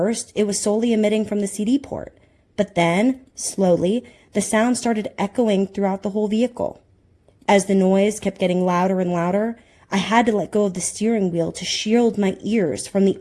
it was solely emitting from the CD port, but then, slowly, the sound started echoing throughout the whole vehicle. As the noise kept getting louder and louder, I had to let go of the steering wheel to shield my ears from the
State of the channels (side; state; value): both; identical; correlation 1.00